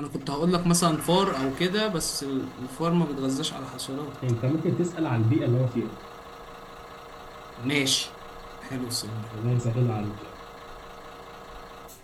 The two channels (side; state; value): both; identical; correlation 1.00